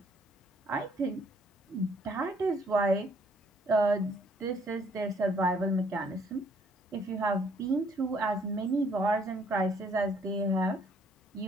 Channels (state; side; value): normal; both; correlation 0.64